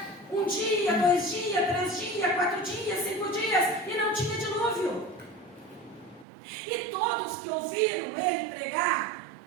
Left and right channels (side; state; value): left; drops out; at 6.2 s